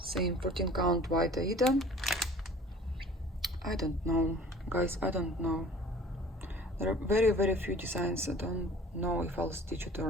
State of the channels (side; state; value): both; normal; correlation 0.48